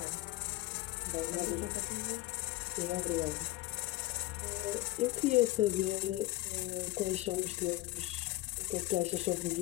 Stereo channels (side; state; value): right; quieter; 17.4 dB